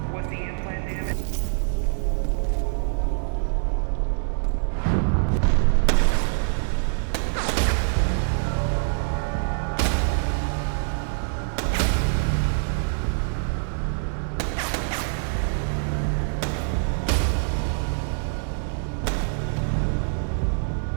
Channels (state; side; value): silent; left; digital silence